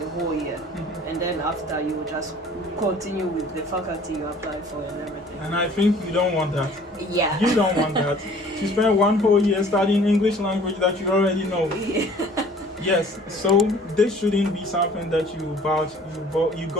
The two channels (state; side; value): normal; both; correlation 0.51